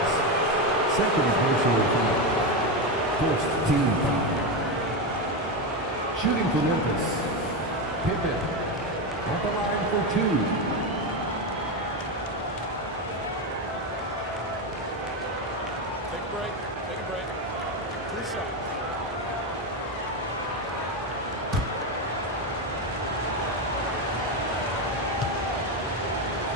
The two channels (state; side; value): normal; both; correlation 0.12